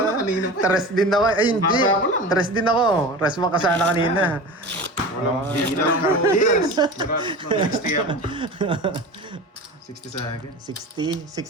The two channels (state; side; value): normal; both; correlation 0.32